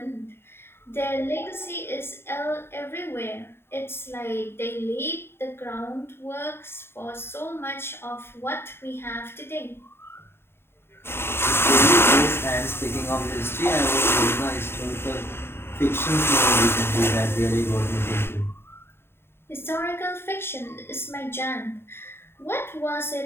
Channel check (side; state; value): right; late; 0.11 ms